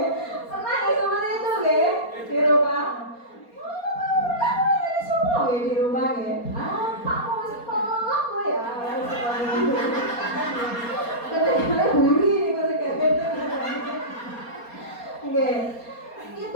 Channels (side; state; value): right; late; 4.3 ms